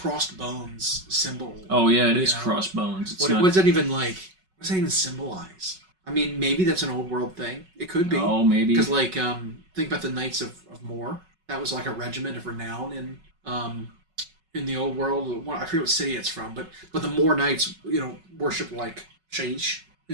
bones symbol? Oh yeah, it is crossed bones. What does that even like? What does that even symbolize? Maybe that's an Old World thing. It could be. Oh, maybe. Because think about the Knights of Mor. That was like a regiment of renown in the Old World. I forget what city it's from, but the Mor Knights, worship like Shaish,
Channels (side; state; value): left; late; 5.3 ms